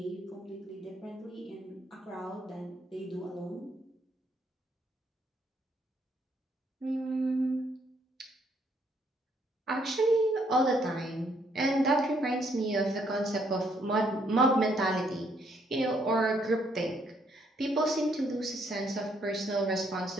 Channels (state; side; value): normal; both; correlation 0.70